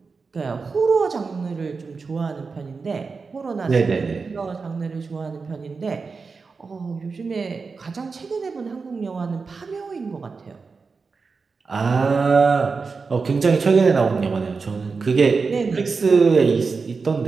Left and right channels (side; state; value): left; quieter; 4.7 dB